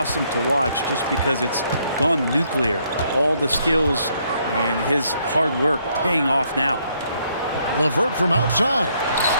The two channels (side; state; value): both; inverted; correlation -0.71